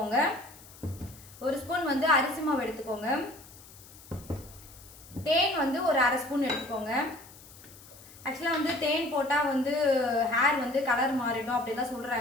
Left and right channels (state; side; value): noise; left; hiss, 20 dB below the sound